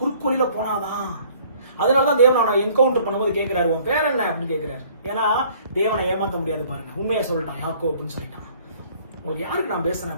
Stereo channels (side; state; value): both; inverted; correlation -0.57